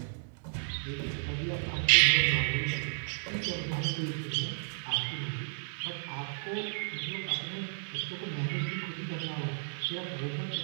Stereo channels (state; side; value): silent; left; digital silence